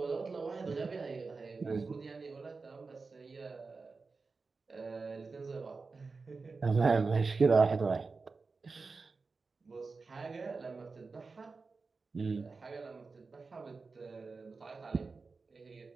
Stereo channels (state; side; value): quieter; left; 4.3 dB